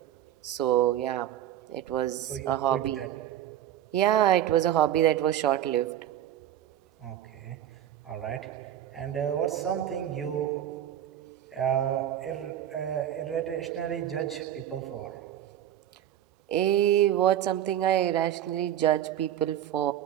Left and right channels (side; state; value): left; quieter; 11.5 dB